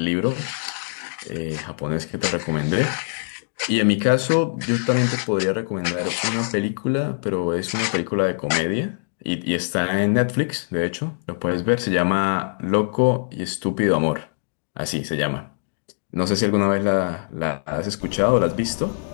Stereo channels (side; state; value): right; silent; digital silence